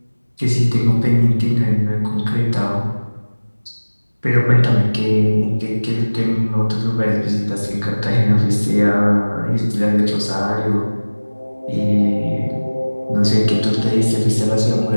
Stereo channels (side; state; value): both; inverted; correlation -1.00